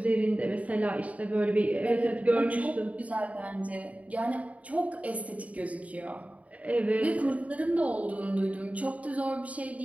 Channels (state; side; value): late; left; 0.068 ms